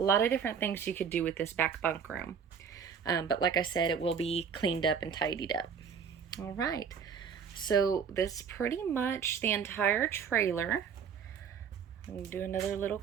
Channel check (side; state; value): left; quieter; 6.8 dB